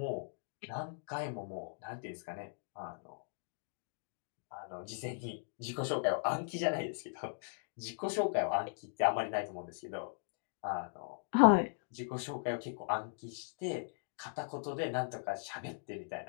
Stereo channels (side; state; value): right; silent; digital silence